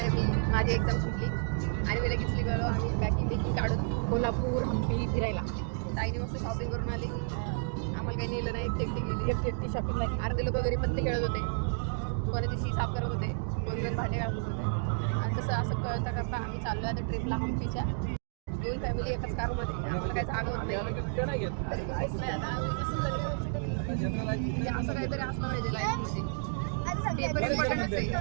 मी माझी एक्झाम संपली आणि मी लगेच निघालो आम्ही पॅकिंग काढून कोल्हापूर हम्पी फिरायला. ताईने मस्त शॉपिंग करून आली. आम्हाला काही नेलं नाही. एकटी शॉपिंग नाही. अर्धे लोक घरी पत्ते खेळत होते, कोणाची शी साफ करत होते, कोण जण भांडे घालत होते. आणि तसं असं करता करता आम्ही चाललो आता ट्रिपला हम्पीच्या. 2 फॅमिली एकाच कारमध्ये. आम्हाला काही जागा होत नाही. असं काहीतरी असलं पाहिजे लाईफमध्ये. पेपर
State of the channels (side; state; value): left; silent; digital silence